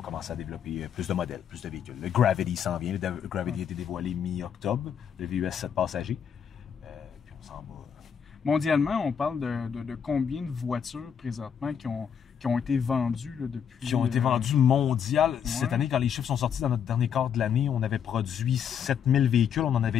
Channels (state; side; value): quieter; right; 7.9 dB